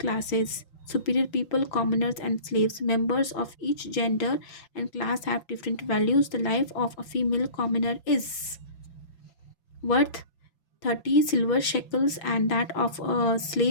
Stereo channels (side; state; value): right; late; 5.8 ms